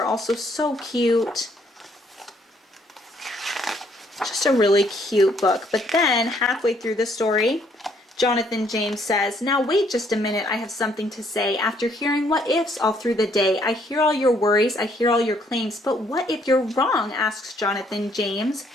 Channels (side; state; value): both; normal; correlation 0.67